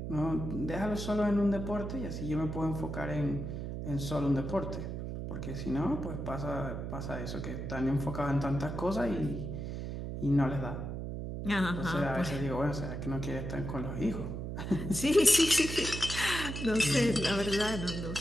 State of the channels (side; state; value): right; noise; hum, 5 dB below the sound